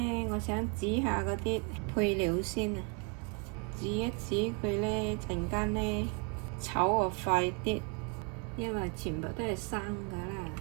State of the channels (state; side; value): quieter; left; 33.4 dB